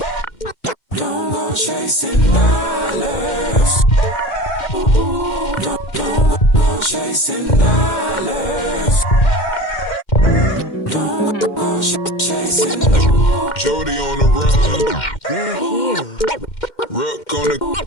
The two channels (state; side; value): late; right; 2.1 ms